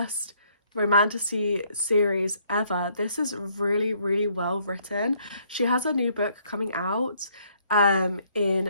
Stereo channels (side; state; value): both; inverted; correlation -0.67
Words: romantasy series ever. This is really, really well written. She has a new book coming out